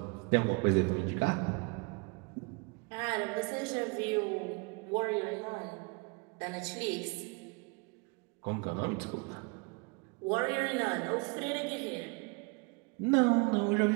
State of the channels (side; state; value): left; quieter; 30.6 dB